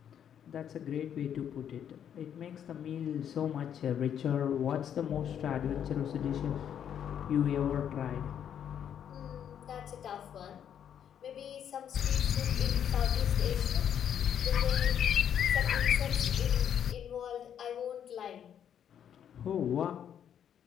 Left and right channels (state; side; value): quieter; right; 9.1 dB